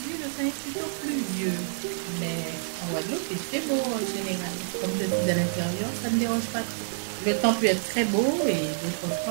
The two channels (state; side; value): silent; left; digital silence